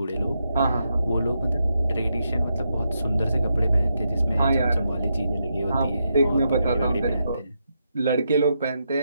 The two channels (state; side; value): inverted; both; correlation -0.83